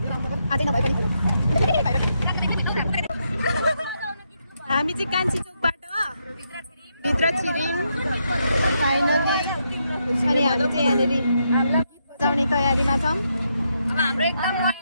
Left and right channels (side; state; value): both; inverted; correlation -0.80